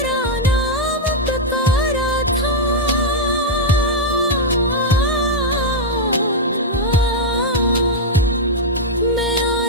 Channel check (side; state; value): both; normal; correlation -0.03